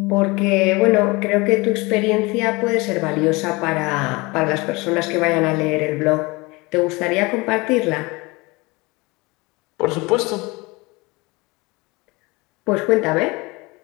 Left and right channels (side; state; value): right; quieter; 24.7 dB